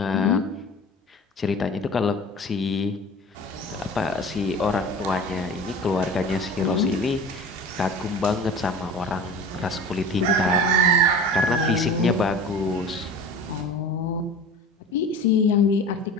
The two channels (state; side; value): normal; both; correlation 0.37